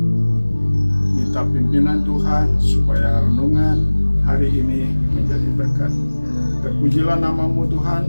minta pimpinan Tuhan supaya renungan hari ini menjadi berkat. Terpujilah namamu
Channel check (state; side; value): inverted; both; correlation -1.00